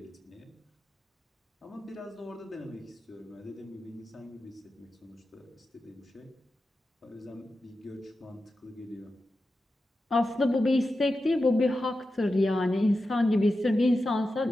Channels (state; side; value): normal; both; correlation 0.91